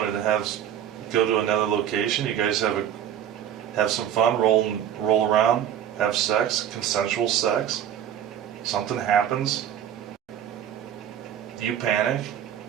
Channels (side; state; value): left; quieter; 10.1 dB